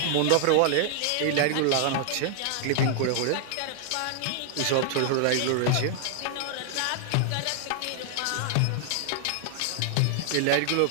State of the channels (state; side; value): different; both; correlation 0.00